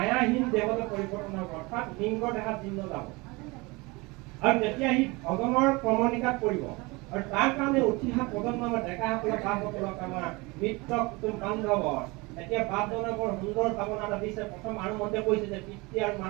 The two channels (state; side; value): quieter; left; 24.9 dB